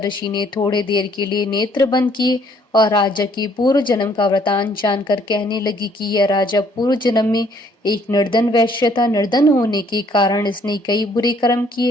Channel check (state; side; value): normal; both; correlation 0.63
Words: ऋषि ने थोड़े देर के लिए नेत्र बंद किए और राजा की पूर्व जन्म का वृतांत जानकर कहने लगी कि यह राजा पूर्व जन्म में एक निर्धन वैश्य था। निर्धन होने के कारण इसने कई बुरे कर्म